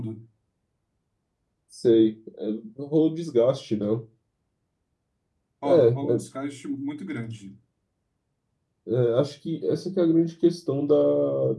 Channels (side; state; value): both; identical; correlation 1.00